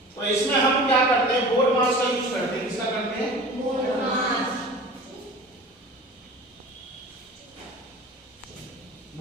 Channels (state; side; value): normal; both; correlation 0.39